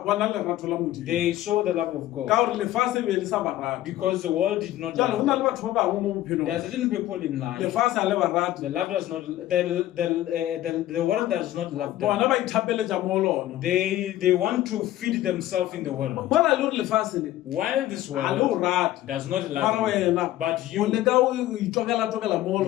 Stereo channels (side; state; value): right; quieter; 14.3 dB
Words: bona lerato la modimo they saw the love of ka God gore lefatshe be le sa ba rate because the world did not jale go love na them. le batho ba bangwe mo bophelong There are certain people in life, lefatshe a le ba rate the love does not, the world does not love them. bona ba ithapeletša mo lona They want to feed themselves in the world. mola le gore lefatshe le While this a le o world rate does not mara love you, wena but o you leka o itokela mo